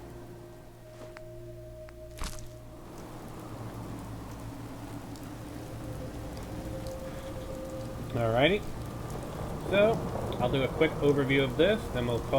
Alrighty. So, I'll do a quick overview of this, then we'll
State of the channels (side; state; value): both; identical; correlation 1.00